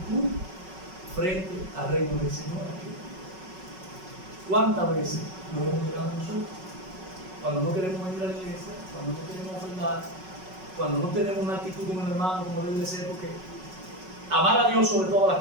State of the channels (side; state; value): left; late; 5.4 ms